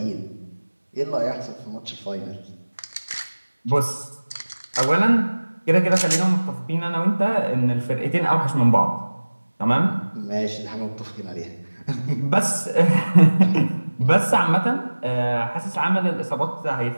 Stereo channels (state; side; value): inverted; both; correlation -1.00